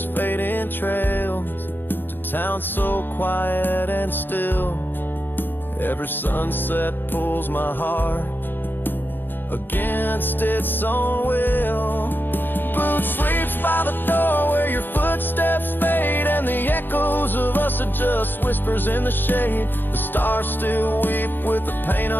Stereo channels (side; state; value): right; late; 0.095 ms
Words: fading trails, to towns so quiet and still. Every sunset pulls my heart against its own will. Boot sleeps by the door where your footsteps fade, and the echoes of us are just whispers in the shade. The stars still weep with the pain